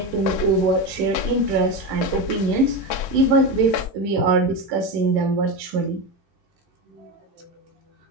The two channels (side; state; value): both; normal; correlation 0.18